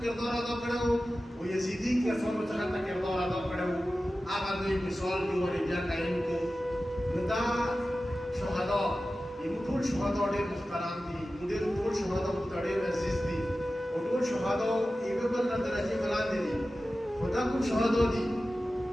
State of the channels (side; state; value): both; normal; correlation 0.94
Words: کردار ادا کړو او یزدي کسانو څنګه د کردار ادا کړو هغه دوی مثال دی ورې بیا قایم کړو نو دا شهدا یو ټول شهدا ډېر محترم دي ډېر ټول شهدا ډېر عزیز دي او ټول شهدا یو بل نه درجه بلاندې دي خدا کوم شهدا دي